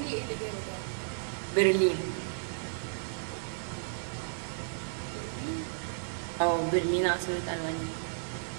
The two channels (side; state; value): left; silent; 56 dB below the other